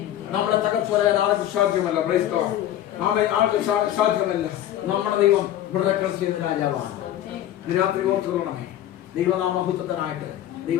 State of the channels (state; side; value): quieter; right; 12.2 dB